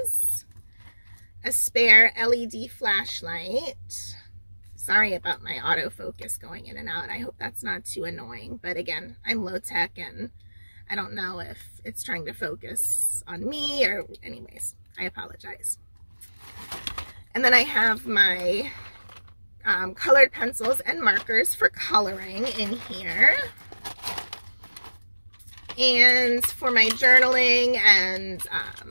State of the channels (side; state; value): both; inverted; correlation -1.00